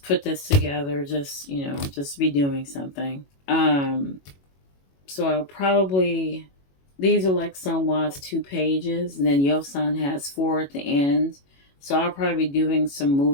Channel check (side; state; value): right; late; 21 ms